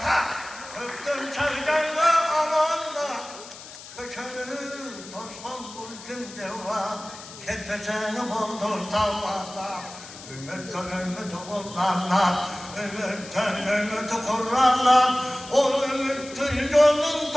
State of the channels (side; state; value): left; noise; hiss, 15 dB below the sound